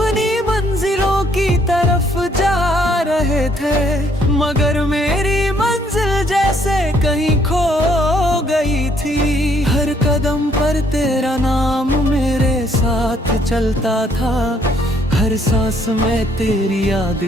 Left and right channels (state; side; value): normal; both; correlation 0.67